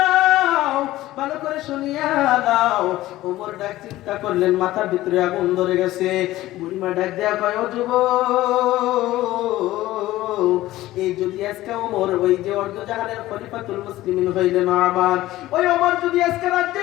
ভালো করে শুনিয়া লাও। ওমর ডাক চিন্তা করলেন মাথার ভিতরে আগুন ধরে গেছে। বুড়িমা ডাক দেয়া কয় ও যুবক এই যদি আজকে ওমর ওই যে অর্ধজাহানের খলিফাতুল মুসলিমিন হইলেন ওমর, ওই ওমর যদি আজকে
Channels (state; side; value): quieter; right; 16.1 dB